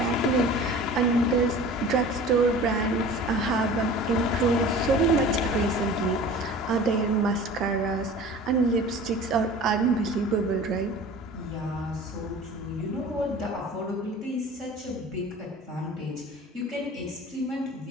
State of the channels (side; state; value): both; normal; correlation 0.41